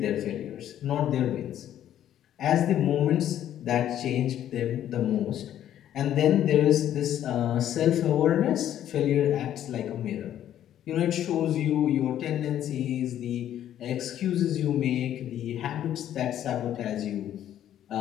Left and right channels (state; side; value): quieter; right; 11.2 dB